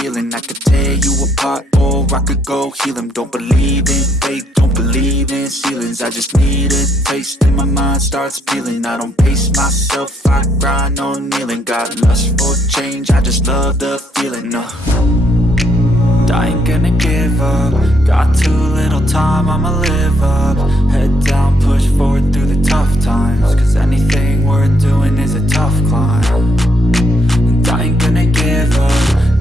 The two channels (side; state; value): both; normal; correlation 0.73